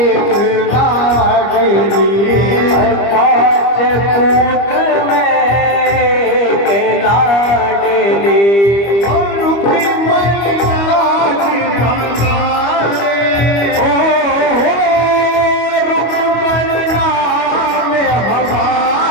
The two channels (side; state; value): right; late; 25 ms